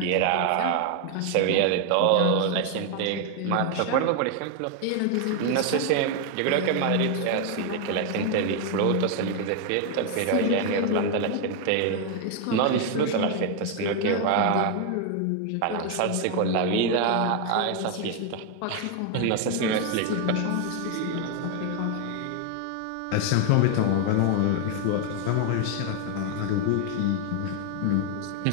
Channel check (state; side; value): different; both; correlation 0.01